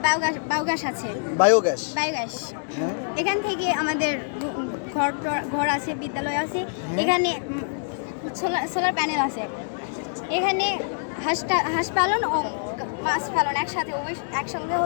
বায়োগ্যাস আছে। বায়োগ্যাস। এখান থেকে আমাদের ঘর আছে, বিদ্যালয় আছে, এখানে সোলার প্যানেল আছে, এখানে হাঁস পালন ও মাছ পালন একসঙ্গে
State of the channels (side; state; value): right; silent; 62 dB below the other